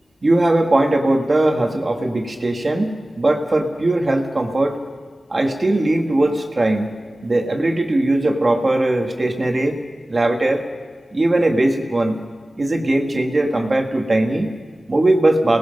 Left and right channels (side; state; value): both; normal; correlation 0.97